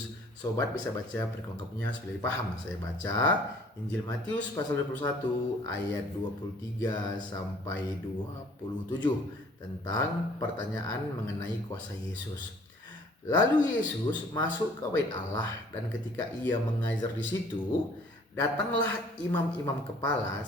Sobat bisa baca perlengkapnya supaya paham. Saya baca Injil Matius pasal 21 ayat 23 sampai 27 tentang pertanyaan mengenai kuasa Yesus. Lalu Yesus masuk ke bait Allah, dan ketika ia mengajar di situ, datanglah imam-imam kepala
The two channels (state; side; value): normal; both; correlation 0.55